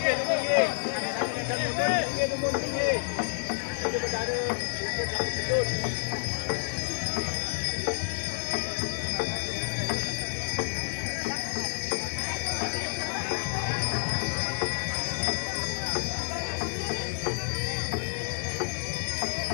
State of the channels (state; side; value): silent; right; digital silence